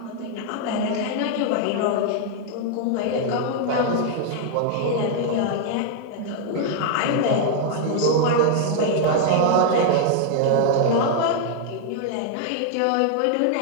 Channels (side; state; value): both; different; correlation 0.00